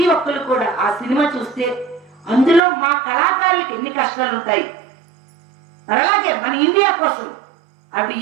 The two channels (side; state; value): left; drops out; at 2.6 s